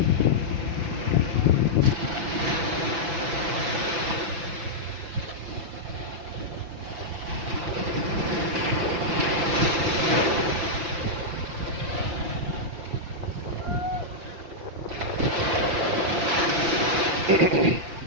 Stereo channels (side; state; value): left; late; 6.1 ms